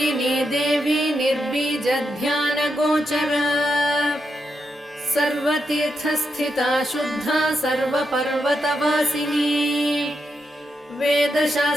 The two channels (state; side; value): normal; both; correlation 0.84